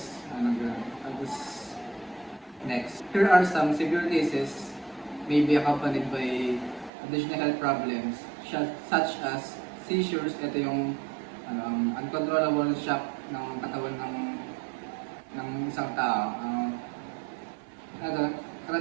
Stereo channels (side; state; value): left; drops out; at 6.9 s